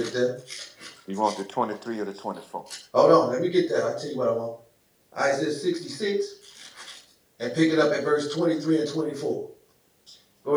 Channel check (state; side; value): identical; both; correlation 1.00